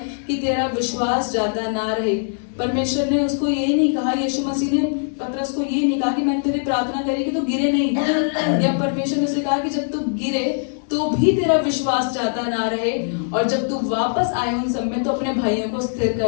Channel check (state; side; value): silent; right; digital silence